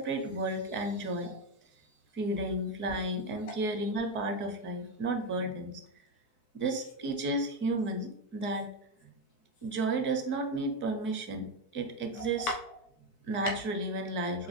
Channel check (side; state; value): right; late; 4.6 ms